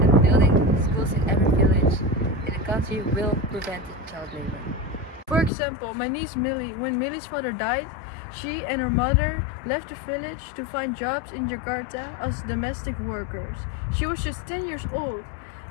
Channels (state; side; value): drops out; right; at 5.5 s